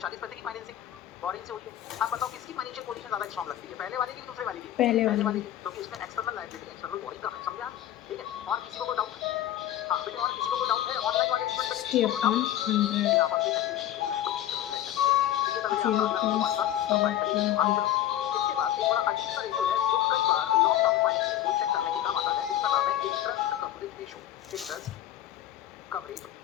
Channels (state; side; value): quieter; right; 12.2 dB